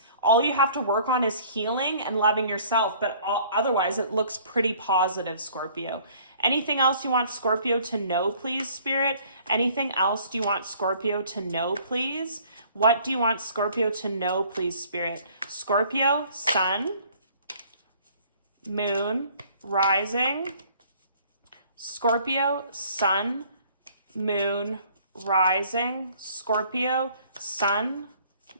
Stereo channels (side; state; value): both; inverted; correlation -0.56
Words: All you have to work on is healing and loving yourself. But otherwise, it looks pretty positive, Scorpio. Anything else you want Scorpio to know, please, Spirit? Anything else do you want Scorpio to know, please? What do you want Scorpio to know, please, Spirit? Scorpio, sun, moon, rising. Scorpio, sun, moon, rising, Scorpio, sun,